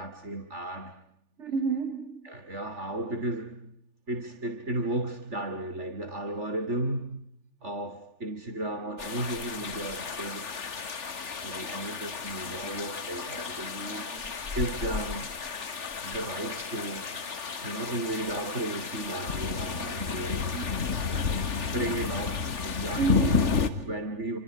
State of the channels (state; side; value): late; left; 3.4 ms